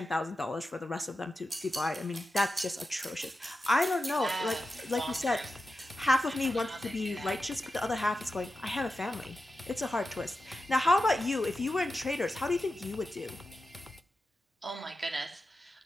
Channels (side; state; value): both; normal; correlation 0.91